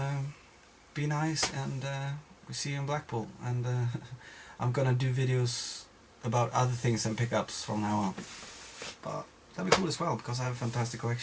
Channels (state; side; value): identical; both; correlation 1.00